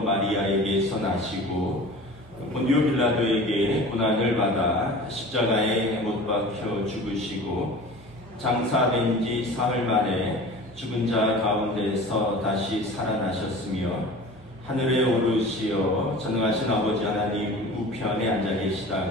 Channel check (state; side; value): normal; both; correlation 0.39